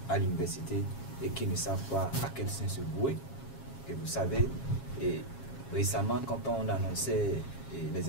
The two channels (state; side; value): late; right; 7.3 ms